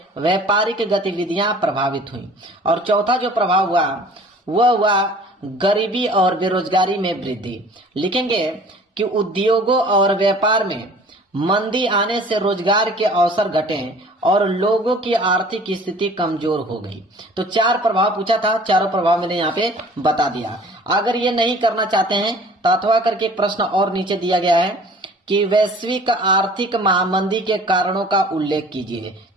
व्यापारिक गतिविधियां प्रभावित हुई। और चौथा जो प्रभाव हुआ वह हुआ गरीबी और बेरोजगारी में वृद्धि। लिखेंगे कि उद्योगों और व्यापार में मंदी आने से रोजगार के अवसर घटे और लोगों की आर्थिक स्थिति कमजोर हो गई। तो 4 प्रभाव पूछा था, चारों प्रभाव मैंने यहाँ पे बता दिया। अगर ये नहीं करना चाहते हैं तो अथवा करके एक प्रश्न और नीचे दिया गया है कि वैश्विक आर्थिक महामंदी के कारणों का उल्लेख कीजिए।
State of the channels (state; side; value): normal; both; correlation 0.48